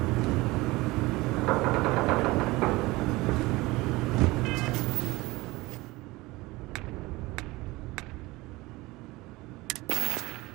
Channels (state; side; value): quieter; left; 21.1 dB